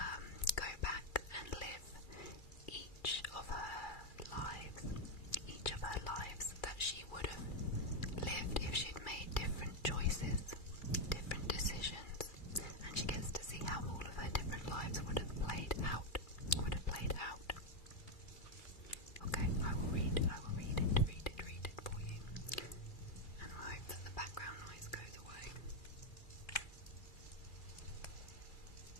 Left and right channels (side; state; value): right; late; 2.4 ms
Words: go back and live each of her lives that she would have lived if she'd made different choices, different decisions, and she gets to see how all of her different lives would have played out. Okay, I will read it for you, and I hope that the background noise goes away.